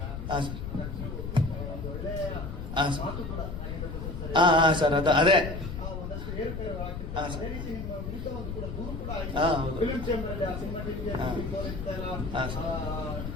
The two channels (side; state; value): left; noise; rumble, 6 dB below the sound